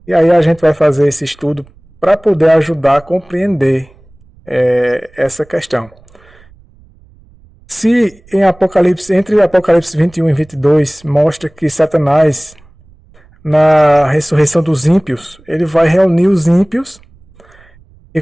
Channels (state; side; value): noise; right; rumble, 28 dB below the sound